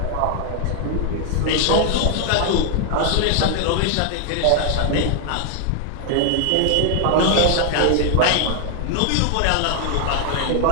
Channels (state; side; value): different; both; correlation 0.00